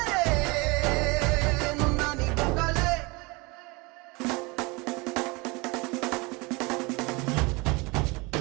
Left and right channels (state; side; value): quieter; left; 26.1 dB